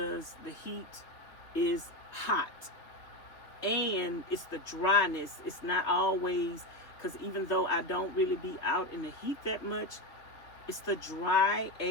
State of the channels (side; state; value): right; late; 3.1 ms